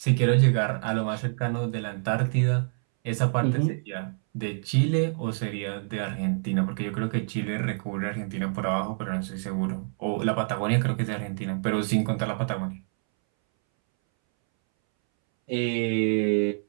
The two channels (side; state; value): left; silent; 60 dB below the other